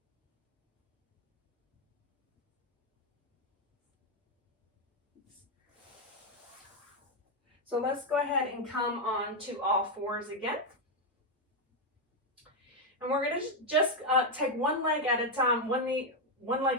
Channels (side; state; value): both; normal; correlation 0.03